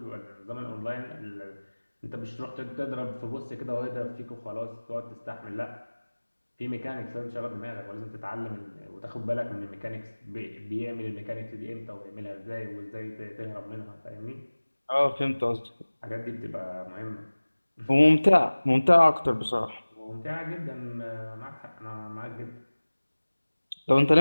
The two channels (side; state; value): both; inverted; correlation -1.00